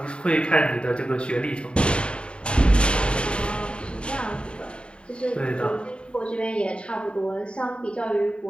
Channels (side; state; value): right; late; 0.054 ms